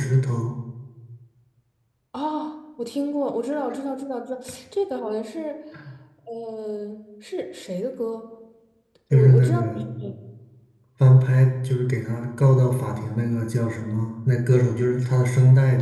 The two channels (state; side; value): identical; both; correlation 1.00